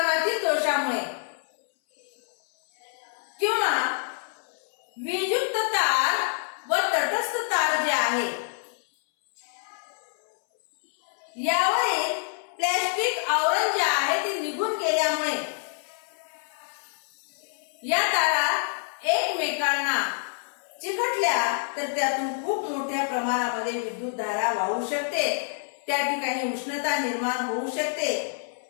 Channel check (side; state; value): right; silent; 60 dB below the other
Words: दोषामुळे किंवा वीजयुक्त तार व तटस्थ तार जे आहे यावरील प्लॅस्टिक आवरण जे आहे ते निघून गेल्यामुळे या तारा एकमेकांना चिकटल्या तर त्यातून खूप मोठ्या प्रमाणामध्ये विद्युत धारा वाहू शकते. त्या ठिकाणी उष्णता निर्माण होऊ शकते.